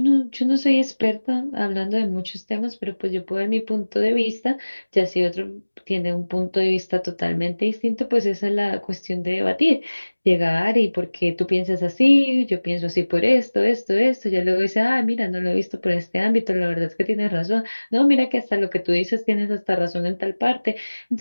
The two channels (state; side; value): inverted; both; correlation -1.00